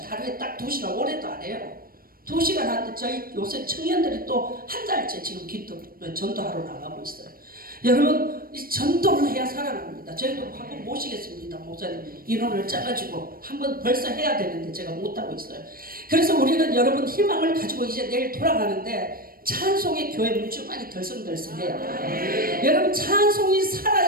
하루에 딱 2시간, 올해도 안 해요. 2시간 하는데 저희 요새 청년들이 또 한 달째 지금 전도하러 나가고 있어요. 여러분 이 전도를 해야 살아납니다. 저희도 한번 모시겠습니다. 목사님 인원을 짜가지고 한번 벌써 해야 되는데 제가 못하고 있어요. 그래서 우리는 여러분 희망을 가지고 이제 내일 돌아가는데 찬송의 교회 물주만이 덜성덜성해요. 여러분 찬송이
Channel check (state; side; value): late; left; 0.43 ms